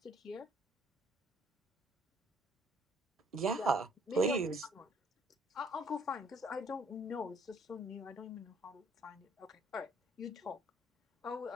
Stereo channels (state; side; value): normal; both; correlation 0.61